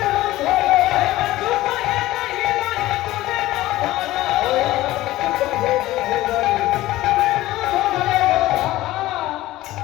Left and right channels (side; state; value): right; quieter; 16.5 dB